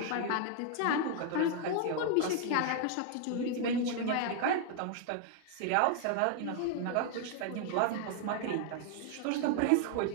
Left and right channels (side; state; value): both; different; correlation 0.00